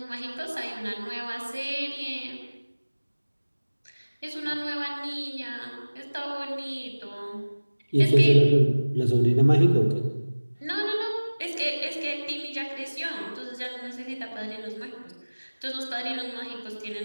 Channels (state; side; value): inverted; both; correlation -1.00